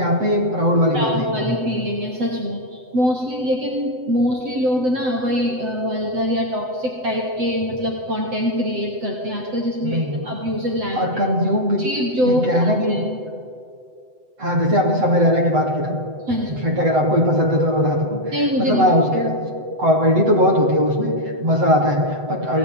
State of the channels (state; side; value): late; left; 7.9 ms